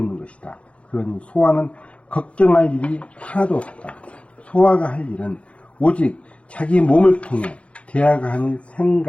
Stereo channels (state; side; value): late; right; 0.062 ms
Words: 것이다. 그러니 소화는 걱정할 일이 하나도 없다. 소화가 할 일은 오직 자기 몸을 통해 대하가 하는